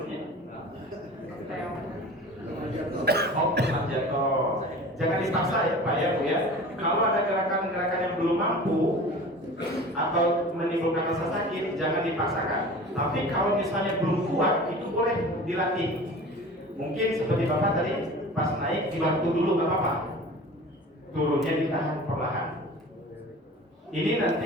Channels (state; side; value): normal; both; correlation 0.39